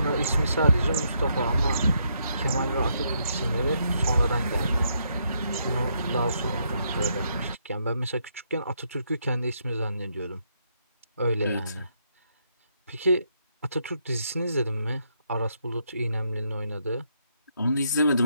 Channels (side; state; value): both; inverted; correlation -0.76